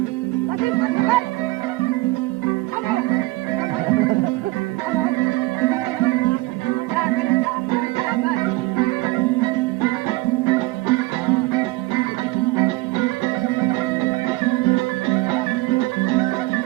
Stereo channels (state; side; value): quieter; left; 20.5 dB